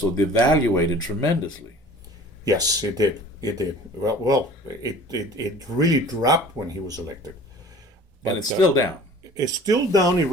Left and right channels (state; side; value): normal; both; correlation 0.46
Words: devaluated tremendously. Yes, it did. It did. Well, it really dropped when he was elected. But it's still down. It's still down. It